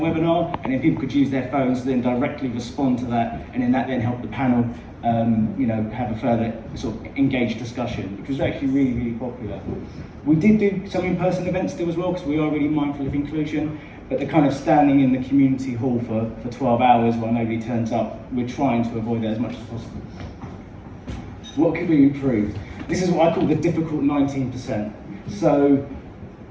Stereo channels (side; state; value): both; identical; correlation 1.00